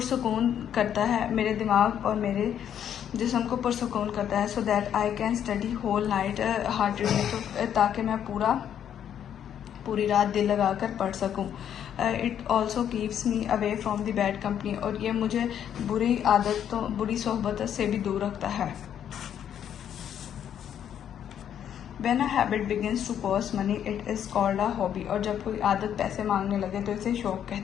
करता है, मेरे दिमाग और मेरे जिस्म को पुरसुकून करता है। So that I can study whole night heartedly, तो ताकि मैं पूरी रात दिल लगाकर पढ़ सकूं। It also keeps me away from the bad company. और ये मुझे बुरी सोहबत से भी दूर रखता है। When a habit begins to cost money, it is called a hobby। और जब कोई आदत पैसे मांगने लगे तो इसे शौक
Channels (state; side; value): quieter; right; 9.5 dB